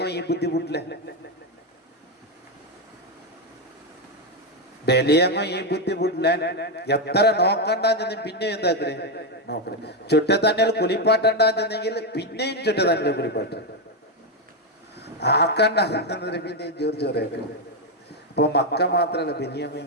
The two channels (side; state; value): both; normal; correlation 0.05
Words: ഈ ബുദ്ധിമുട്ടില്ലേ? ബലിയങ്ങോ ഈ ബുദ്ധിമുട്ടില്ല. എത്ര നോക്കണ്ടെന്ന് പിന്നെ എന്താക്കേ നോക്കണേ. ചുറ്റ തന്നെ കുളിപ്പാട്ടുണ്ടെങ്കിൽ പിന്നെയും ചുറ്റ തന്നെ കുളിപ്പാട്ട് ആക്കണ്ട പിന്നെയും ജോറ് ചോറേക്കും. അപ്പൊ മക്ക മാത്രല്ല ബലിയങ്ങോ